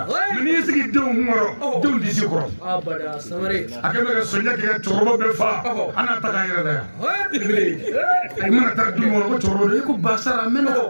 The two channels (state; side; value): inverted; both; correlation -1.00